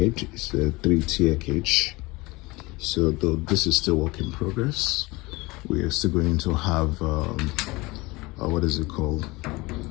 It's a 3-tier cage. So though this is still work in progress, we are still going to have what is it called?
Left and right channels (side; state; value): right; quieter; 22.9 dB